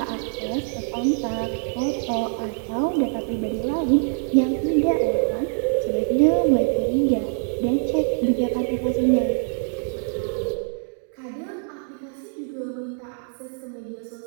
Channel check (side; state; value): left; silent; 60 dB below the other